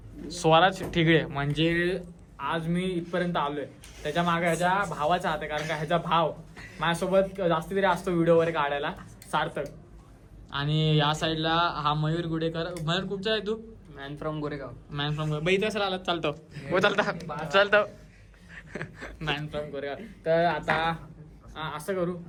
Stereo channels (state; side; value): identical; both; correlation 1.00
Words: स्वराज ठिगळे. म्हणजे आज मी इथपर्यंत आलोय त्याच्या मागे ह्याच्या भावाचा हात आहे. कारण का ह्याचा भाव माझ्यासोबत जास्ती तरी असतो व्हिडिओ वगैरे काढायला, सार्थक. आणि या साईडला हा मयूर गुडेकर. मयूर कुठचा आहे तू? Man from Goregaon. बाई तसं आला चालतो मॅन फ्रॉम गोरेगाव. तर आता असं करू